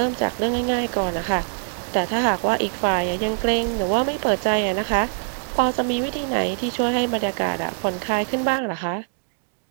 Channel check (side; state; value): left; silent; digital silence